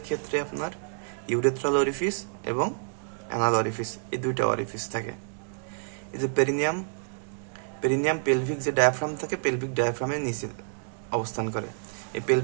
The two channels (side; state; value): left; silent; digital silence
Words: ক্ষেত্রে আপনার ইউরেথ্রাল ওয়ারিফিস এবং অ্যানাল ওয়ারিফিস, এই দুইটা ওয়ারিফিস থাকে। এই যে পেরিনিয়াম পেলভিক যে ডায়াফ্রাম থাকে, পেলভিক ডায়াফ্রামের নিচে অবস্থান করে। এই